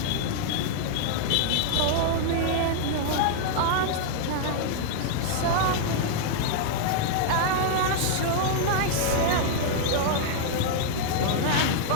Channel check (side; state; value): both; different; correlation 0.00